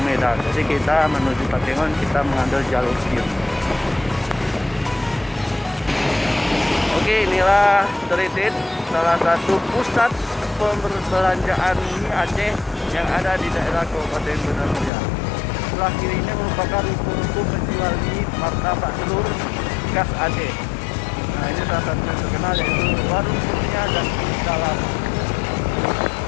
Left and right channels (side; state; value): right; drops out; at 14.9 s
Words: Medan. Jadi kita menuju Takengon, kita mengambil jalur kiri. Oke, inilah Telitin, salah satu pusat perbelanjaan mie Aceh yang ada di daerah Kabupaten Banda Meriah. Sebelah kiri ini merupakan ruko-ruko penjual mie, martabak telur khas Aceh. Nah, ini salah satu yang terkenal yaitu Warung Kurnia dan Dalam.